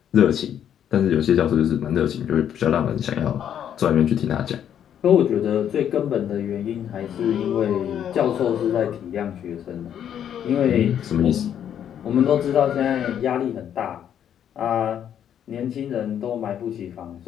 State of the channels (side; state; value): right; quieter; 9.5 dB